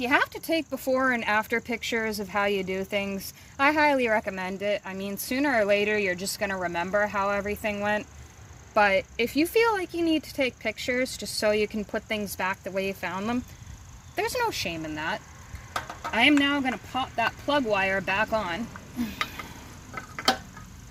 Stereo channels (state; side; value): identical; both; correlation 1.00